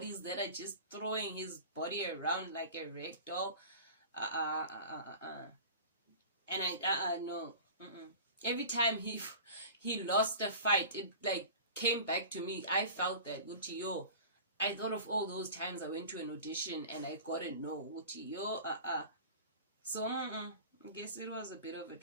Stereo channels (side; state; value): both; inverted; correlation -0.38